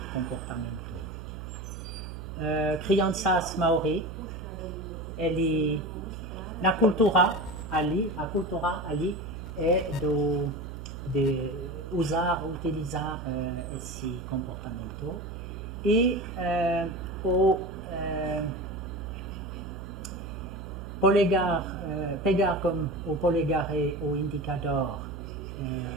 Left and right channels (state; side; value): noise; right; hum, 9 dB below the sound